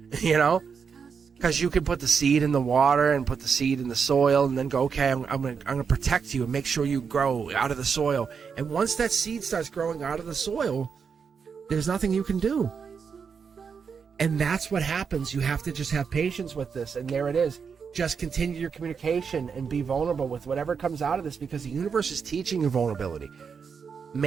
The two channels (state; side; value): quieter; left; 6.2 dB